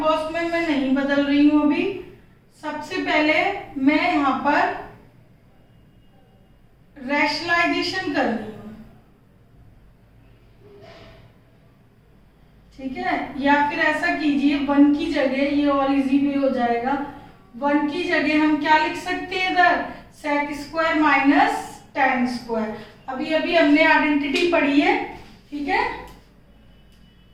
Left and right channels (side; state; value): both; identical; correlation 1.00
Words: कॉस में मैं नहीं बदल रही हूँ अभी। सबसे पहले मैं यहाँ पर रैशनलाइजेशन कर रही हूँ, ठीक है। या फिर ऐसा कीजिए, 1 की जगह, ये और इजी भी हो जाएगा, 1 की जगह हम क्या लिख सकते हैं इधर, sec square minus tan square. अभी अभी हमने आइडेंटिटी पढ़ी है, ठीक है।